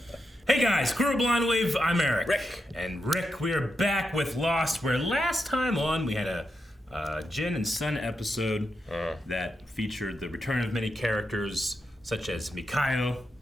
Hey guys, Crew Blind Wave, I'm Eric. Rick. And Rick, we are back with Lost, where last time on we had a Jin and Sun episode that featured the return of many characters, such as Mikhail.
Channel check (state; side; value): normal; both; correlation 0.85